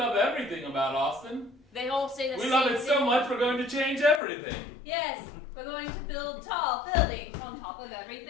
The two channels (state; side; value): drops out; right; at 4.2 s